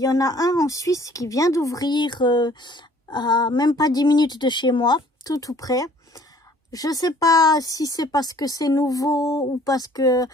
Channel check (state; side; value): normal; both; correlation 0.56